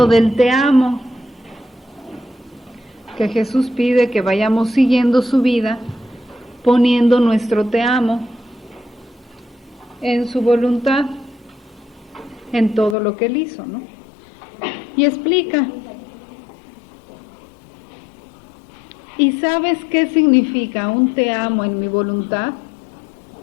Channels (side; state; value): right; drops out; at 13.0 s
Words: del te amo, que Jesús pide que vayamos siguiendo su vida, poniendo nuestro te amo en su voluntad, en todo lo que él hizo, ¿no? Y explica. ¿Y sabes qué significa un te amo en mi voluntad?